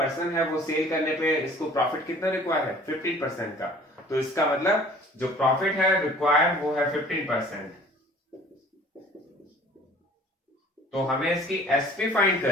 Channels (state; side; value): normal; both; correlation 0.50